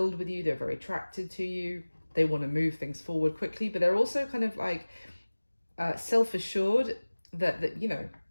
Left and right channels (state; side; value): inverted; both; correlation -1.00